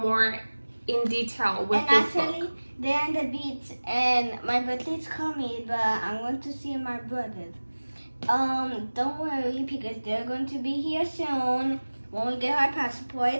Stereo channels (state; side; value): inverted; both; correlation -1.00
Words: in detail with and this actually, book. they're on the beach, and my birthday's coming, but I'm going to see my brothers. Don't worry because they're going to be here soon when we get our